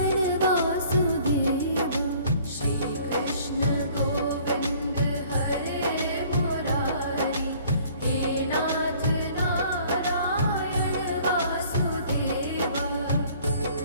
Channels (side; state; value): both; inverted; correlation -0.55